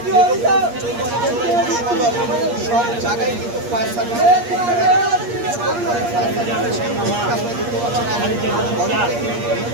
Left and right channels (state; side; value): late; left; 8.5 ms